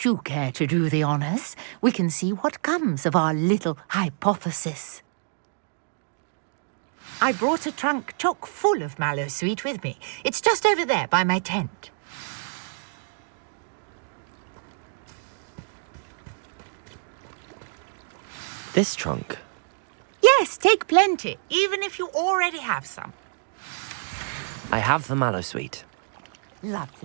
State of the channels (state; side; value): silent; left; digital silence